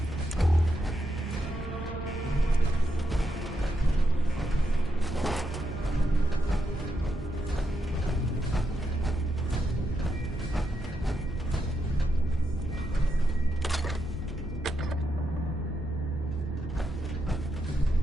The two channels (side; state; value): both; normal; correlation 0.83